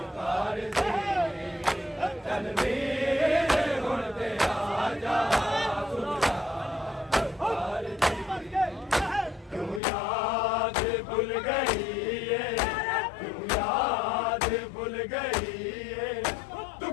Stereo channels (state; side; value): drops out; right; at 9.8 s